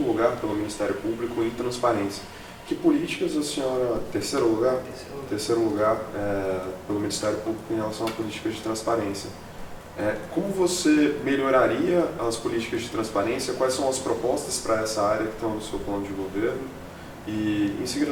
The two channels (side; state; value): both; identical; correlation 1.00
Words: lugar pelo Ministério Público em transparência. Que políticas a senhora, terceiro lugar pelo Ministério Público em relação a políticas de transparência? Como você melhoraria as políticas de transparência? Quais são as propostas para essa área que estão no seu plano de governo? E, em